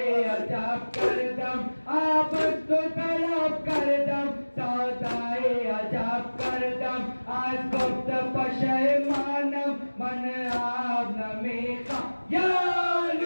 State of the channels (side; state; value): both; inverted; correlation -1.00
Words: आज वक्त पशे मानव मन आग में खा, या